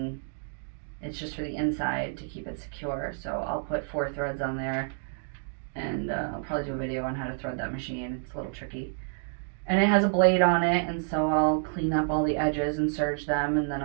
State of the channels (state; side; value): silent; left; digital silence